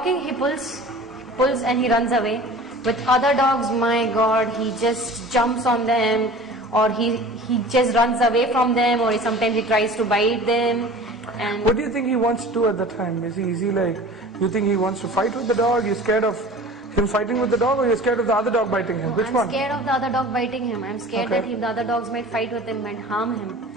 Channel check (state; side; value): normal; both; correlation 0.41